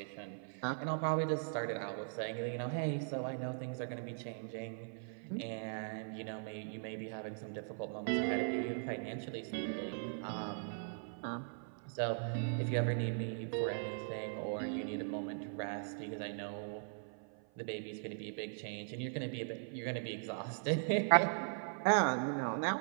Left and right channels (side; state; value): left; silent; 51 dB below the other